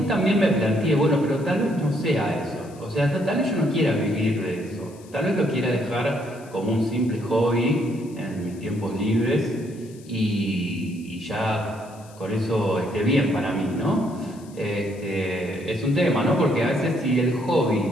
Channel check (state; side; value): noise; left; hiss, 25 dB below the sound